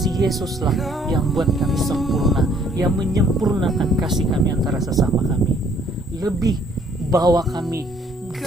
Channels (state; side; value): normal; both; correlation 0.62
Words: Yesuslah yang buat kami sempurna, yang menyempurnakan kasih kami antara sesama kami. Lebih bahwa kami